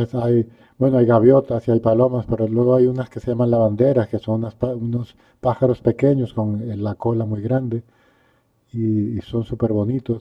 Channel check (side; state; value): both; identical; correlation 1.00